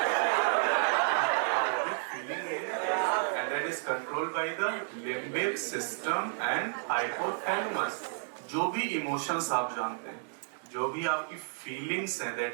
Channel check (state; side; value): silent; left; digital silence